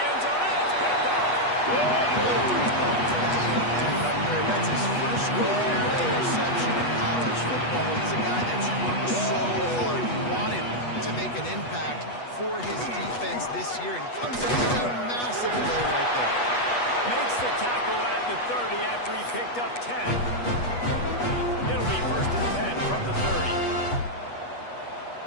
end zone. It's picked off. That's his first career interception in college football. He's a guy that's worked so hard. He wanted to make an impact for his defense this year, and comes up with a massive play right there. Makes the tackle at the 30 after he picked up 10. It'll be 1st and 10 from the 30.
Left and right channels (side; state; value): right; late; 8.2 ms